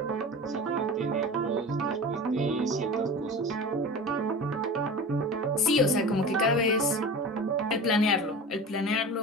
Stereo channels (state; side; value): normal; both; correlation 0.33